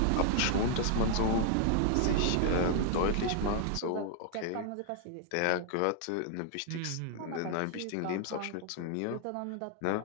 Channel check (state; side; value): different; both; correlation 0.00